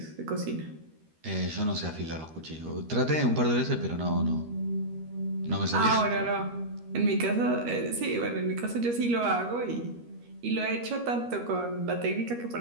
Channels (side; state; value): left; late; 13 ms